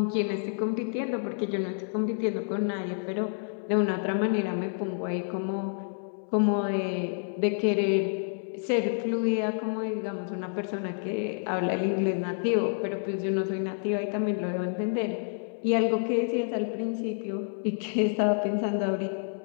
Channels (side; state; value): right; silent; 59 dB below the other